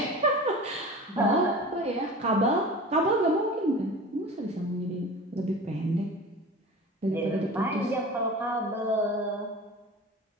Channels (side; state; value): both; normal; correlation 0.36